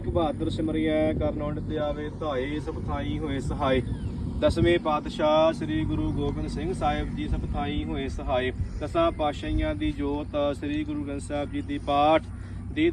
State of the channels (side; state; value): both; identical; correlation 1.00